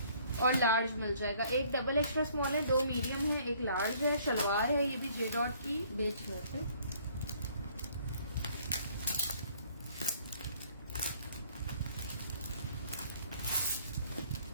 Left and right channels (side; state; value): both; inverted; correlation -0.60